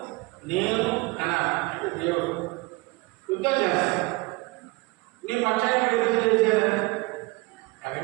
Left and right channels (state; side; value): quieter; left; 24.5 dB